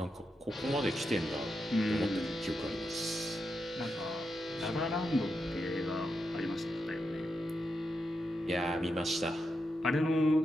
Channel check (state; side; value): normal; both; correlation 0.86